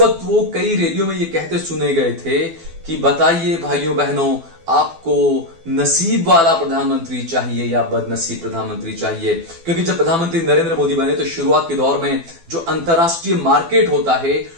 वक्त वो कई रैलियों में ये कहते सुने गए थे कि बताइए भाइयों बहनों, आपको नसीब वाला प्रधानमंत्री चाहिए या बदनसीब प्रधानमंत्री चाहिए? क्योंकि जब प्रधानमंत्री नरेंद्र मोदी बने तो शुरुआत के दौर में जो अंतरराष्ट्रीय मार्केट होता है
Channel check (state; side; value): late; left; 12 ms